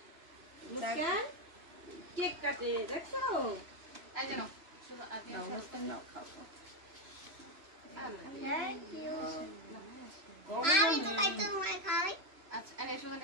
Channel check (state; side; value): late; left; 3.0 ms